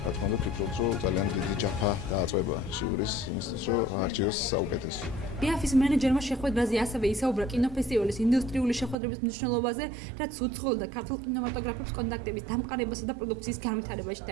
თქმა უნდა, ვფიქრობ, რომ ძალიან დიდი ჯაფა დააწყვება ჟიურის იმისთვის, რომ არჩიოს საუკეთესო. ბიაფის მენეჯერმა შეხვედრაზე ასევე ისაუბრა კინოფესტივალის ინდუსტრიული შეხვედრების მნიშვნელობაზე, რაც უცხოელ და ქართულ კინემატოგრაფებს კონტაქტების დამყარებასა და პროდუქციის განვითარებაში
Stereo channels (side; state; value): left; drops out; at 9.0 s